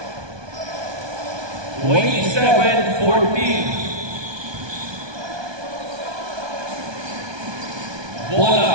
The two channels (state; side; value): late; left; 1.2 ms